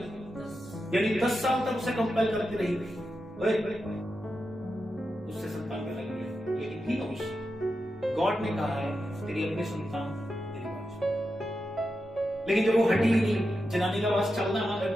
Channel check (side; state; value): both; normal; correlation 0.89